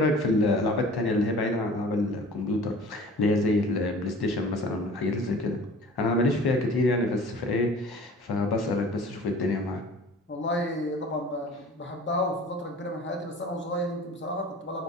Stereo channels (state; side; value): normal; both; correlation 0.44